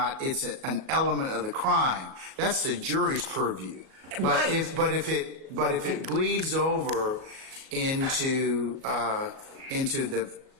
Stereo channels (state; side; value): late; left; 37 ms